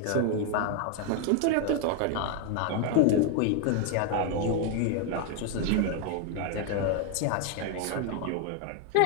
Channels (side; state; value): both; different; correlation 0.01